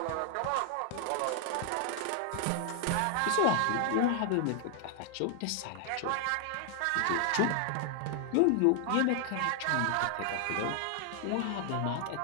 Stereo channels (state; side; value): different; both; correlation 0.00